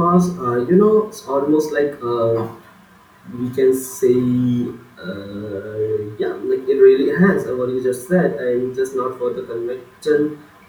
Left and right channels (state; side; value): identical; both; correlation 1.00